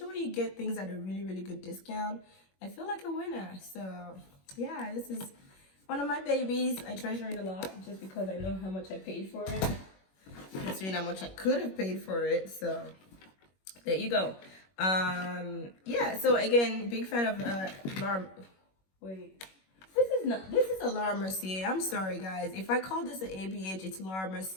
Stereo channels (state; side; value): late; right; 21 ms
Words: when you get things at a really good discount, I feel like a winner. So yeah, this is one of my babies. I treasure it a lot just because I know how much I paid for it, considering how much I could have paid for it. So there you go. Yeah, so again, big fan of Laura. Wait, this is a Laura Mercier. I'm sorry guys, if I call this an ABH, it's Laura